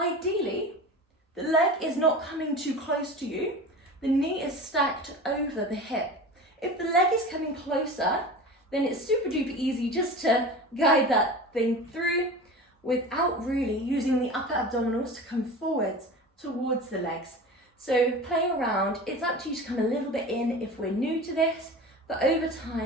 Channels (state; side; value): normal; both; correlation 0.33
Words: the leg is not coming too close to you. The knee is stacked over the hip. If the leg is coming closer, then it's super duper easy just to guide that thing through without really using the upper abdominals to come forwards towards the legs. So play around. It's up to you to come a little bit in if we're new to this, but over